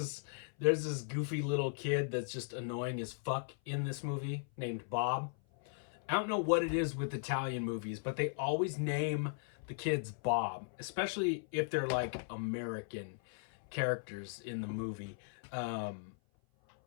this goofy little kid that's just annoying as fuck in this movie named Bob. I don't know what it is with Italian movies, but they always name the kids Bob, especially if they're like American characters in the movie.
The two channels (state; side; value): silent; right; 53 dB below the other